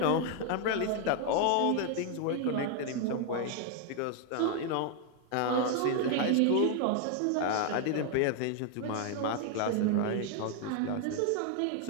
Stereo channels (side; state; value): both; different; correlation 0.00